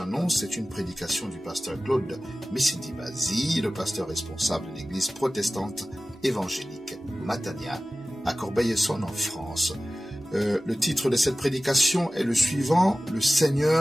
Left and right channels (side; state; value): both; normal; correlation 0.96